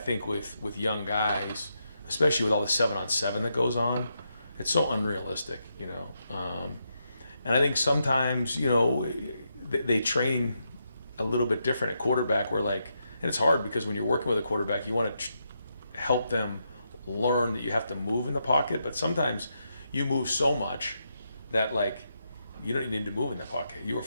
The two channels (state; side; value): inverted; both; correlation -0.82